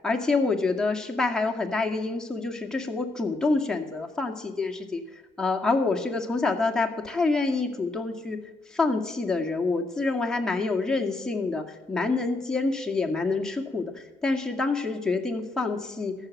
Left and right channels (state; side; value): quieter; right; 3.1 dB